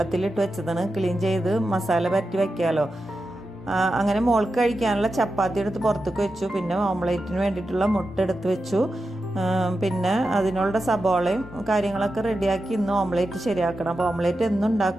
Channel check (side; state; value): both; normal; correlation 0.90